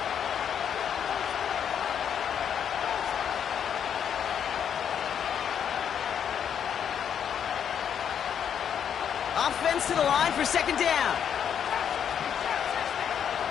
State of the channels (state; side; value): quieter; right; 8.4 dB